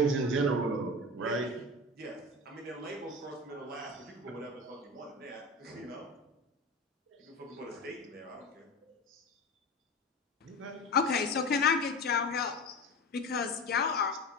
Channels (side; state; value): both; normal; correlation 0.29